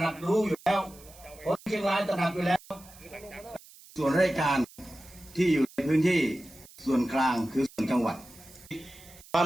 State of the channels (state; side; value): noise; right; hiss, 22 dB below the sound